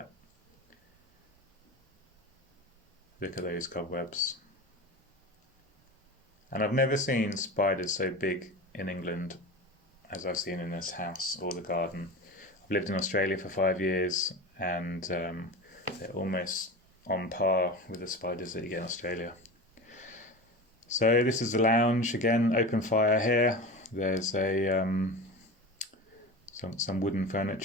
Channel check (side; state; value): both; normal; correlation 0.29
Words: Look at those cobwebs. And I've never seen spiders so big in England as I've seen in this house or the garden. I've lived in Australia for 5 years, and they're almost on par with the spiders that you get in Australia. So this is the lounge again, open fire here. There's a some wooden